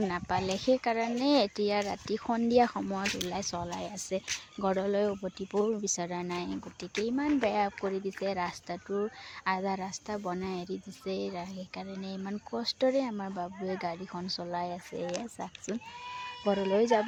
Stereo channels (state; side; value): identical; both; correlation 1.00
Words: নাপালে, সেইকাৰণে এতিয়া ৰাতি সন্ধিয়া সময়ত চলাই আছে। ঘৰলৈ উভতিবও বিচৰা নাই, গতিকে ইমান বেয়া কৰি দিছে। ৰাস্তাটো আধা ৰাস্তা বনাই এৰি দিছে, সেইকাৰণে ইমান কষ্টৰে আমাৰ বাবুৱে গাড়ীখন চলাই আছে। এয়া চাওকচোন, ঘৰলৈ